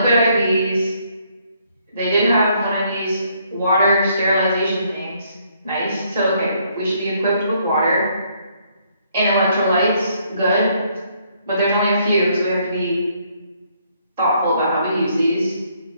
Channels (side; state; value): both; inverted; correlation -0.69